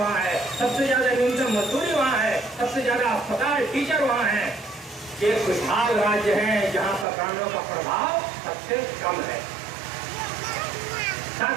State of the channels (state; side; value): drops out; left; at 7.1 s